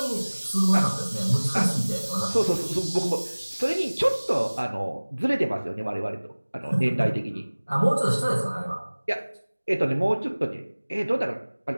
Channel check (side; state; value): both; inverted; correlation -1.00